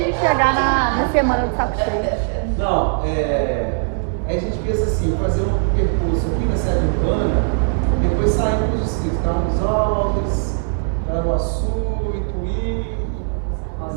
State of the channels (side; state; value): left; silent; 66 dB below the other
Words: de chegar na semana do saco cheio. Não, aí a gente pensa assim, fazer um percurso aqui na sede urbana, depois sair para os distritos, Carlos Alves, Caraguaçu, Ituí,